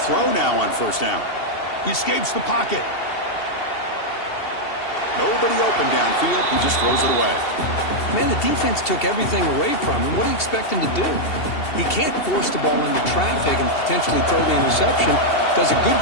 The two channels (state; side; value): late; right; 2.7 ms